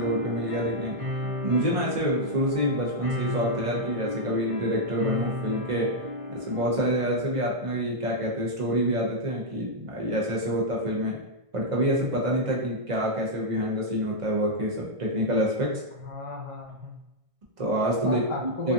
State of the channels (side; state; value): left; late; 1.6 ms